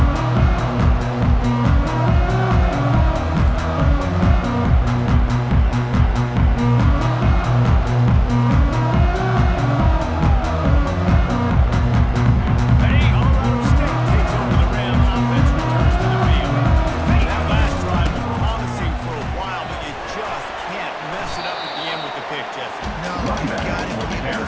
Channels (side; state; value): both; identical; correlation 1.00